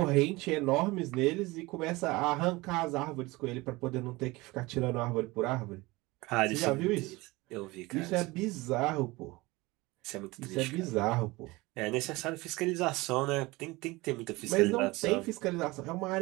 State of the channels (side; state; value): left; quieter; 21.9 dB